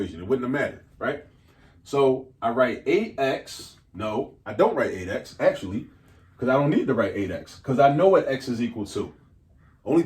It wouldn't have mattered, right? So I write 8x. No, I don't write 8x, actually, because I don't need to write 8x, because I know what x is equal to. Only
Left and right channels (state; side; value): identical; both; correlation 1.00